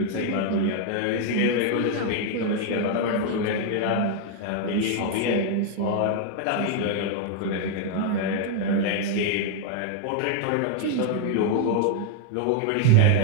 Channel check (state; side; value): different; both; correlation 0.00